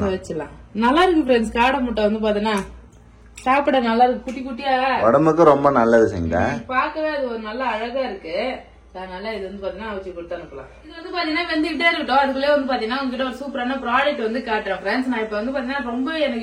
வச்சிடலாம். நல்லா இருக்கு ஃப்ரெண்ட்ஸ். காடை முட்டை வந்து பாத்தீங்கன்னா சாப்பிட நல்லா இருக்கு, குட்டி குட்டியா, உடம்புக்கு ரொம்ப நல்லது. செஞ்சா பாக்கவே அது ஒரு நல்ல அழகா இருக்கு. அதனால இது வந்து பாத்தீங்கன்னா வச்சு கொடுத்து அனுப்பலாம். இது வந்து பாத்தீங்கன்னா வெந்துகிட்டே இருக்கட்டும். அதுக்குள்ளே வந்து பாத்தீங்கன்னா உங்ககிட்ட ஒரு சூப்பரான ப்ராடக்ட் வந்து காட்டுறேன் ஃப்ரெண்ட்ஸ். நான் இப்ப வந்து பாத்தீங்கன்னா ரொம்ப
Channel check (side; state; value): both; identical; correlation 1.00